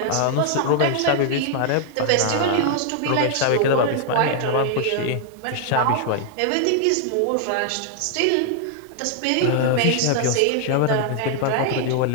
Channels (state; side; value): different; both; correlation 0.00